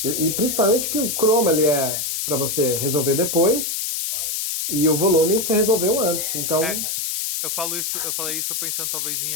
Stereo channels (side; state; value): left; noise; hiss, 2 dB below the sound